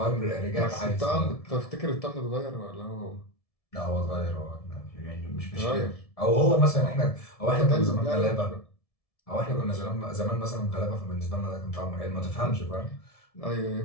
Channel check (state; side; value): late; right; 1.7 ms